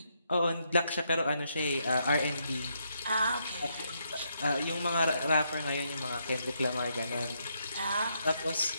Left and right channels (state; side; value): inverted; both; correlation -0.77